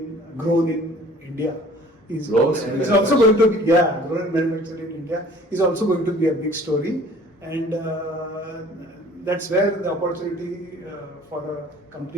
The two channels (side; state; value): both; normal; correlation 0.51